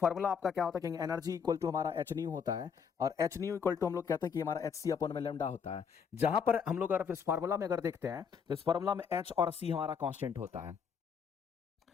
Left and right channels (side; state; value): right; quieter; 6.6 dB